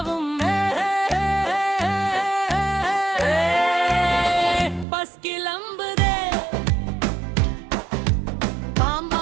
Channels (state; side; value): drops out; left; at 4.9 s